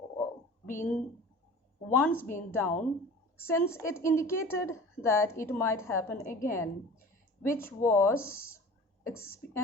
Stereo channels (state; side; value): normal; both; correlation 0.40